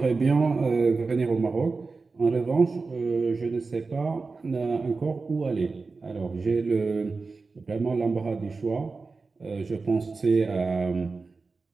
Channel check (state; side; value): quieter; left; 4.1 dB